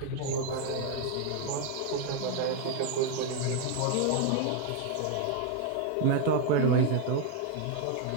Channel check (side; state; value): both; different; correlation 0.01